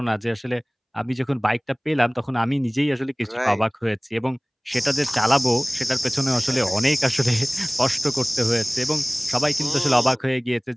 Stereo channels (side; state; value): both; identical; correlation 1.00